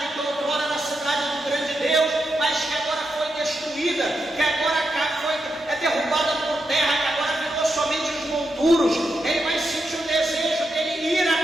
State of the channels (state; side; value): normal; both; correlation 0.85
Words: que outrora era a cidade do grande Deus, mas que agora foi destruída, que agora foi derrubada por terra, que agora virou somente os monturos. Ele vai sentir o desejo dele ir